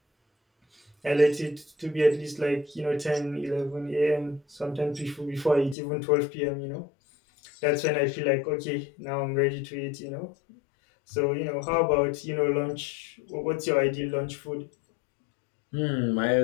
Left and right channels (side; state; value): right; drops out; at 5.8 s